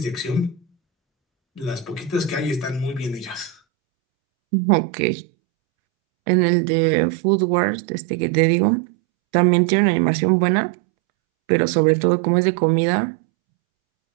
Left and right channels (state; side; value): drops out; left; at 3.6 s